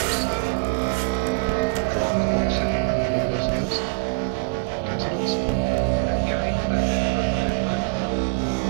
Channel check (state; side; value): silent; left; digital silence